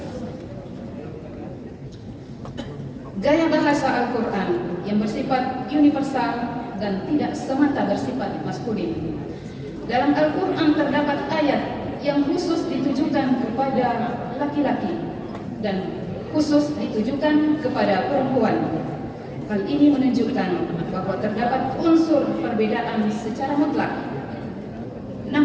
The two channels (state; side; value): identical; both; correlation 1.00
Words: Gaya bahasa Al-Quran yang bersifat universal dan tidak semata bersifat maskulin. Dalam Al-Quran terdapat ayat yang khusus ditujukan kepada laki-laki dan khusus ditujukan kepada perempuan. Hal ini menunjukkan bahwa terdapat unsur perbedaan secara mutlak.